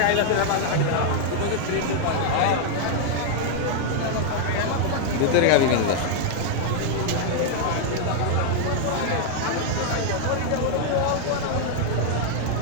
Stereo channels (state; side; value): different; both; correlation 0.00